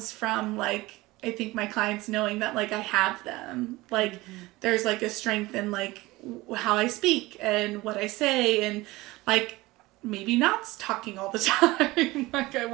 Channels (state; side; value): quieter; left; 20.2 dB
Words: from like I think my clients knowing that like I have them. Like there's like a strength in like how I speak and what I say and like maybe not talking all the time like I